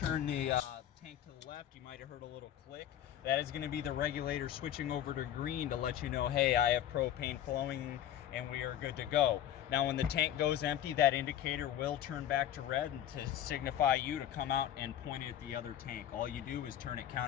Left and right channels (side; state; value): right; quieter; 11.2 dB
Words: the tank to the left, you might have heard a little click. That is going to be the regulator switching over to green to let you know, hey, I have propane flowing and we are good to go. Now when the tank goes empty, that indicator will turn back to red and to signify you to come out and point it at the other tank. All you do is turn it